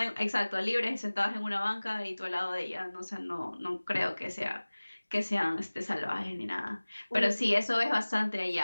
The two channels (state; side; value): inverted; both; correlation -1.00